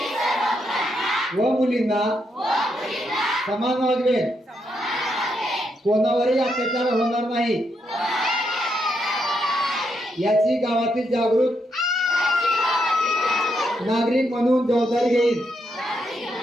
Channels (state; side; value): normal; both; correlation 0.80